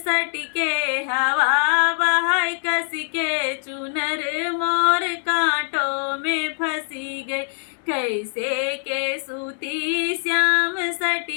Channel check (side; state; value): right; silent; 57 dB below the other